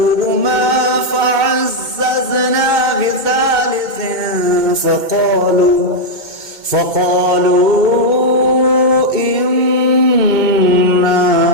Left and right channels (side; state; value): left; late; 2.2 ms